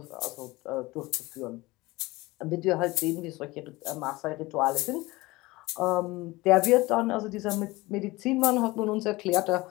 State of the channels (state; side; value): quieter; right; 21.0 dB